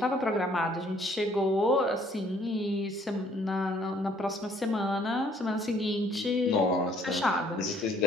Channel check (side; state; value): both; normal; correlation 0.63